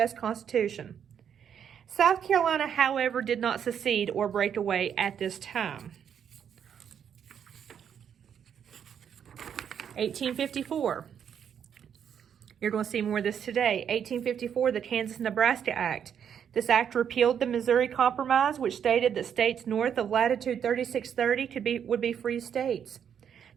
Constitution. South Carolina, however, did not secede or break away at this time. 1854. You're going to see more of this today. 1854, the Kansas-Nebraska Act. This act repealed the Missouri Compromise, which stated that states north of latitude 3630 would be free states.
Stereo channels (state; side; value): quieter; left; 8.3 dB